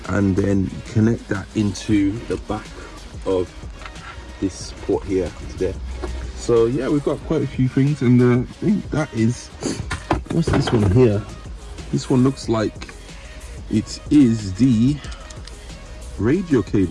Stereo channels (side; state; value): both; identical; correlation 1.00